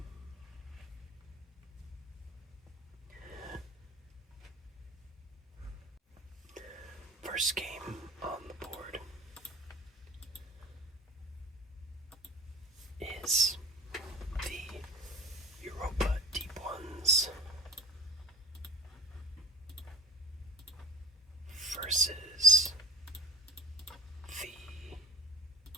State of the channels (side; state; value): both; normal; correlation 0.38